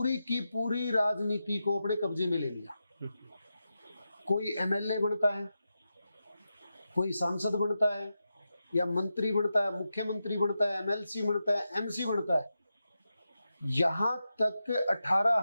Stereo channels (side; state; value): both; inverted; correlation -0.90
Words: की पूरी राजनीति को अपने कब्जे में ले लिया। कोई एमएलए बनता है, कोई सांसद बनता है या मंत्री बनता है, मुख्यमंत्री बनता है, एमएलसी बनता है, एमसी बनता है। यहां तक